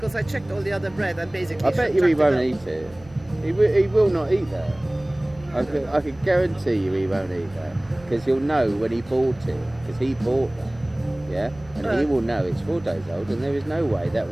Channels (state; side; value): noise; right; hum, 22 dB below the sound